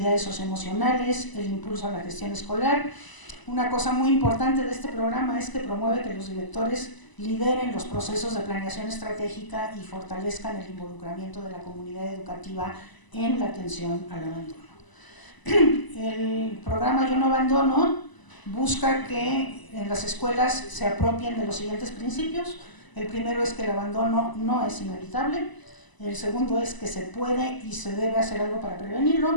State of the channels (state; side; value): late; right; 1.0 ms